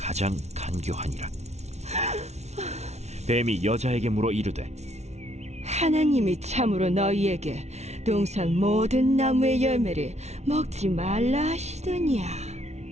간교하니라. 뱀이 여자에게 물어 이르되 하나님이 참으로 너희에게 동산 모든 나무의 열매를 먹지 말라 하시더냐.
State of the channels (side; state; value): left; late; 0.32 ms